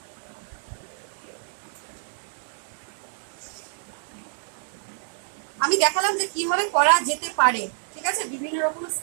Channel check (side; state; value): left; silent; 60 dB below the other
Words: আমি দেখালাম যে কিভাবে করা যেতে পারে। ঠিক আছে? বিভিন্ন রকম